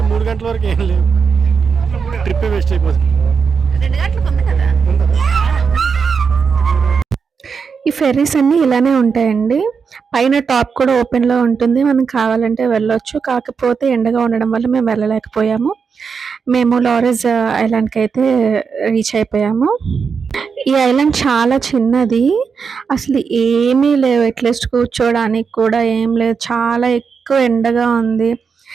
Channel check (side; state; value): left; quieter; 5.8 dB